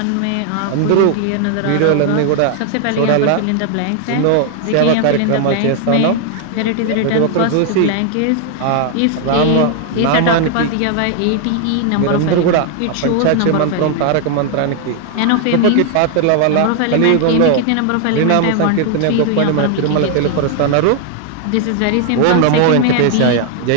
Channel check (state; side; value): different; both; correlation 0.00